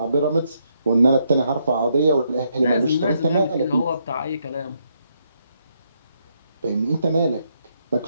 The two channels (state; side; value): inverted; both; correlation -0.76